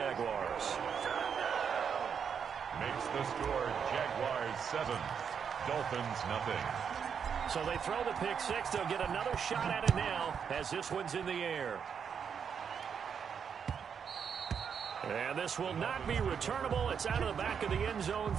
Makes the score Jaguars 7, Dolphins nothing. So they throw the pick six. They'll get another shot at it now as this one's in the air. And this will not be returnable. It's out of the back of the end zone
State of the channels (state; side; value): quieter; left; 7.1 dB